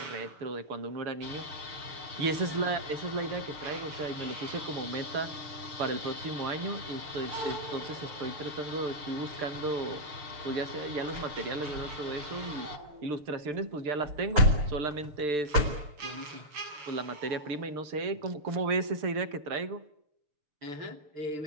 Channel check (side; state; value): left; late; 6.7 ms